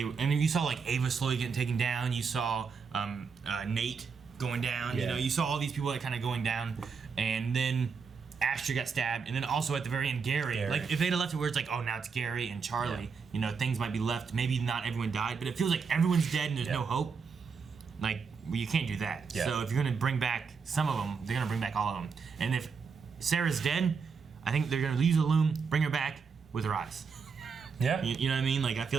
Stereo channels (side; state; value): left; quieter; 5.6 dB